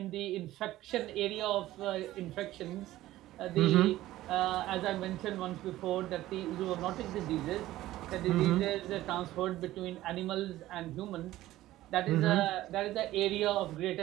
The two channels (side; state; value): left; quieter; 15.5 dB